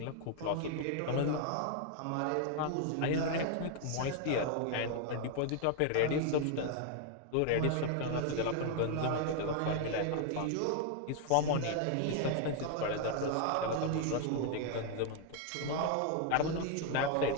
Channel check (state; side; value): different; both; correlation 0.00